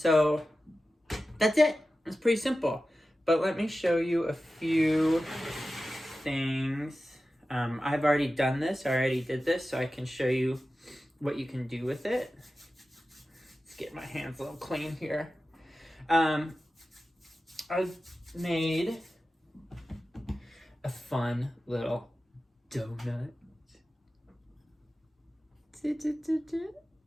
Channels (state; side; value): normal; both; correlation 0.94